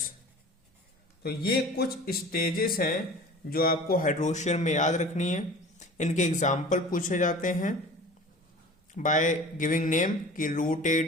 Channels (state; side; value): normal; both; correlation 0.40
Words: तो ये कुछ स्टेजेस हैं जो आपको हाइड्रोशियर में याद रखनी है। इनके एग्जाम्पल पूछे जाते हैं बाय गिविंग नेम, कि